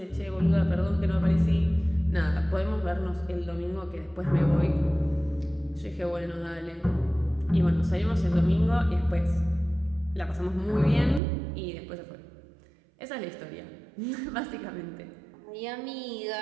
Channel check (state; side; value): drops out; left; at 11.2 s